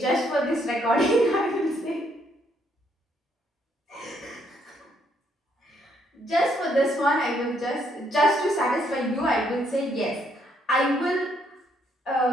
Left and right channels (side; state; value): both; normal; correlation 0.71